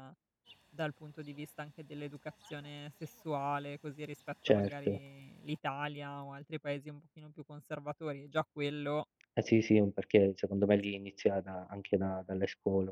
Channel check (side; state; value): both; identical; correlation 1.00